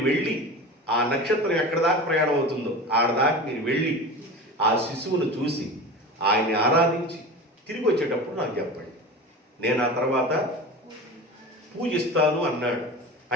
వెళ్ళి ఆ నక్షత్రం ఎక్కడ దాకా ప్రయాణం అవుతుందో ఆడదాకా మీరు వెళ్ళి ఆ శిశువును చూసి ఆయన్ని ఆరాధించి తిరిగి వచ్చేటప్పుడు నాకు చెప్పండి, నేను ఆ తర్వాత పూజిస్తాను అన్నాడు.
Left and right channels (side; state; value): both; normal; correlation 0.31